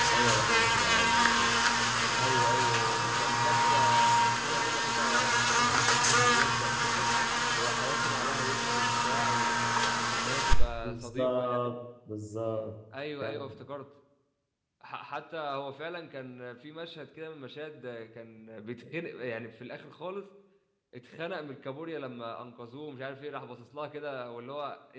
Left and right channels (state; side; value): identical; both; correlation 1.00